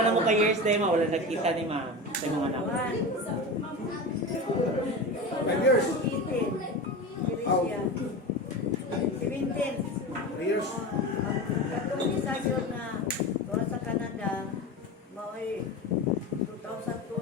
na mo ka years day ma wala nagkita ni ma'am sa imong anak. 5 years. 17. 3 years. Katong isa yun na doon sa Canada, mao'y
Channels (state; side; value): normal; both; correlation 0.26